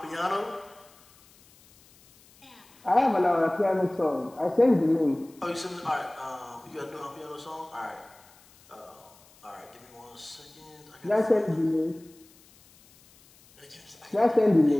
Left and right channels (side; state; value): left; noise; hiss, 27 dB below the sound